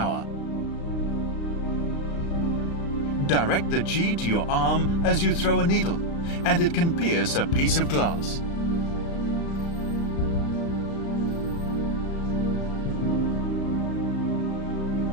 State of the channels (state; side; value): late; right; 36 ms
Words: Direct the Qi to your arm as you throw a needle, and it can pierce a piece of glass.